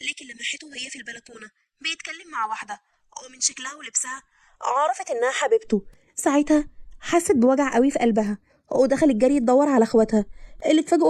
لكن لمحته وهي في البلكونه بيتكلم مع واحده ومن شكلها ولبسها عرفت انها حبيبته. ساعتها حست بوجع قوي في قلبها ودخلت جري تدور على اخواتها اللي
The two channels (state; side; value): identical; both; correlation 1.00